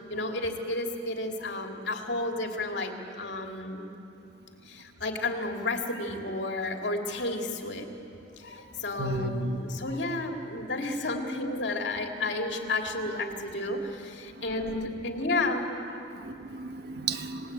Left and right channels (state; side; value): normal; both; correlation 0.16